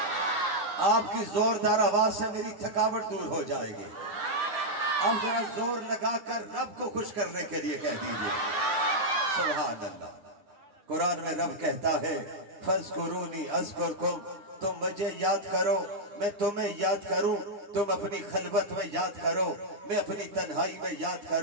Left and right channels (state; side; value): late; left; 10 ms